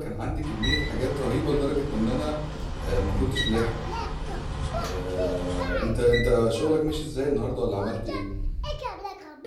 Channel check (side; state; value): both; identical; correlation 1.00